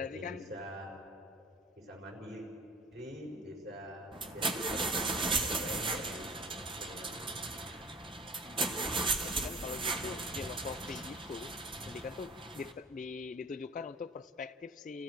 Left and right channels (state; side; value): normal; both; correlation 0.43